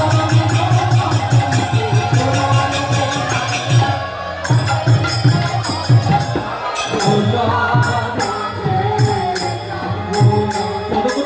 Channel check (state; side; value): identical; both; correlation 1.00